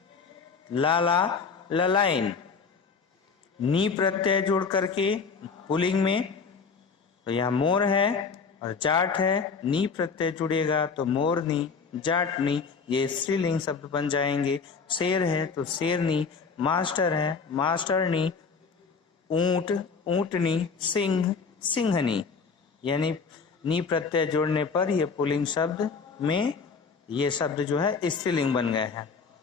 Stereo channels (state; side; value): quieter; right; 5.3 dB